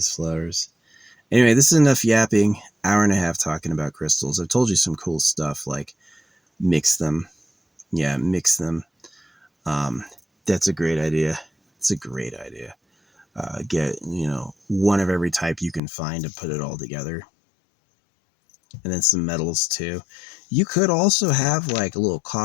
flowers. Anyway, this is enough yapping. Hour and a half talking about crystals. I've told you some cool stuff, like mix them. Yeah, mix them. That's a great idea. It's a great idea. Get, one of every type you can find and put it all together. And then some metals too. You could also have like a little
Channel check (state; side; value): drops out; right; at 15.8 s